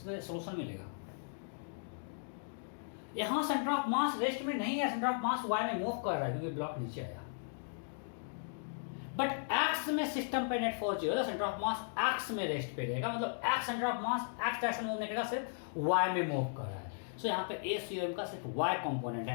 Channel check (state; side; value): silent; right; digital silence